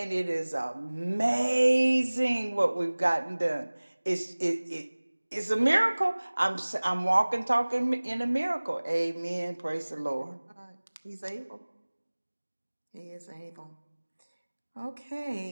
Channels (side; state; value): both; inverted; correlation -1.00